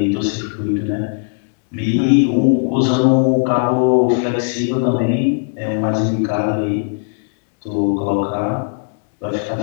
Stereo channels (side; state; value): right; silent; digital silence